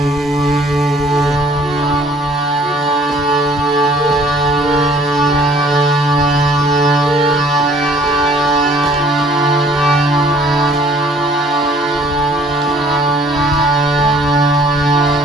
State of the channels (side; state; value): both; normal; correlation 0.56